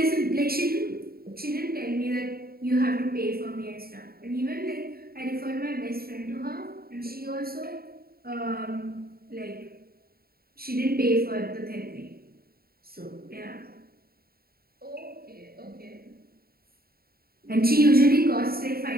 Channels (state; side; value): late; left; 0.44 ms